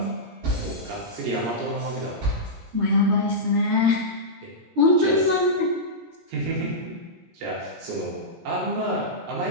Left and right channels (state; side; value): late; left; 17 ms